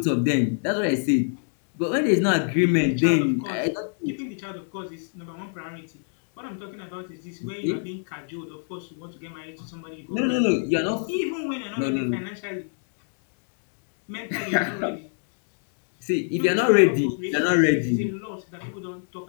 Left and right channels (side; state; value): right; silent; digital silence